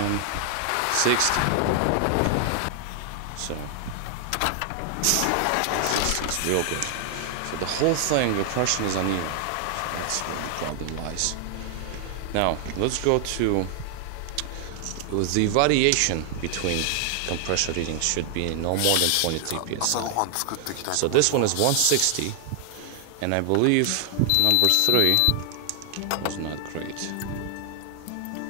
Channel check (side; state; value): both; different; correlation 0.00